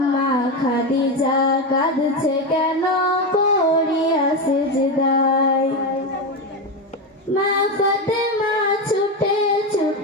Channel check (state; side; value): normal; both; correlation 0.14